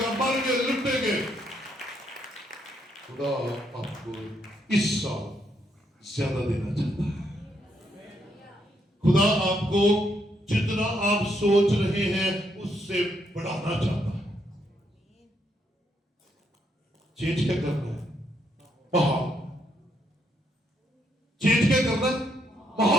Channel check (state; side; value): normal; both; correlation 0.76